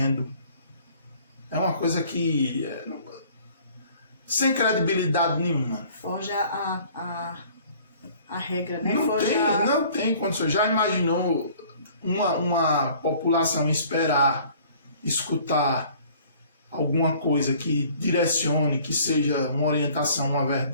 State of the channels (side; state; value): both; inverted; correlation -0.53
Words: É uma coisa que... sem credibilidade nenhuma. Foge a regra, né? Não tem condições. Já imaginou uma população esperar, escutar alguma coisa que direcione, que seja uma orientação, uma